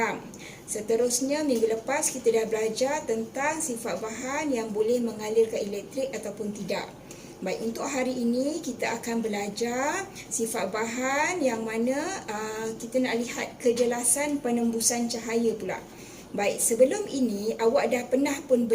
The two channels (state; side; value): identical; both; correlation 1.00